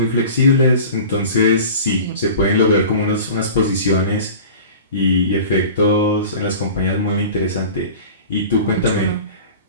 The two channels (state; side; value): inverted; both; correlation -0.39